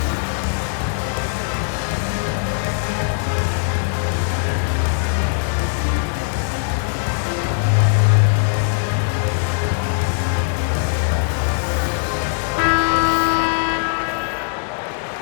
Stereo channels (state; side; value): silent; right; 60 dB below the other